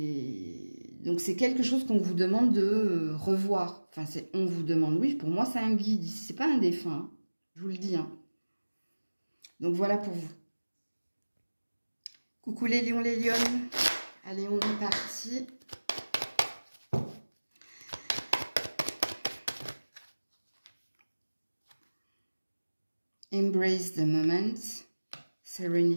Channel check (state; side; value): inverted; both; correlation -1.00